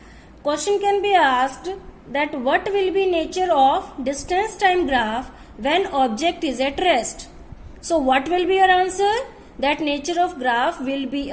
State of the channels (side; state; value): both; identical; correlation 1.00